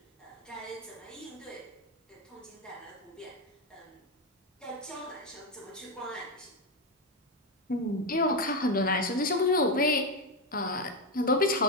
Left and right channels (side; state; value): both; normal; correlation 0.10